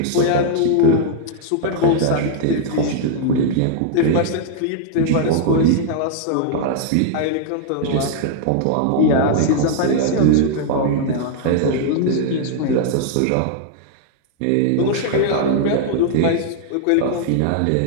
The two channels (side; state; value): both; different; correlation -0.01